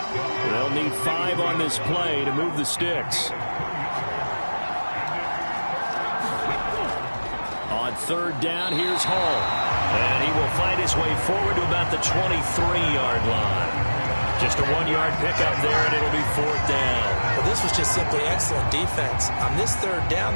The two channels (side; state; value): both; inverted; correlation -1.00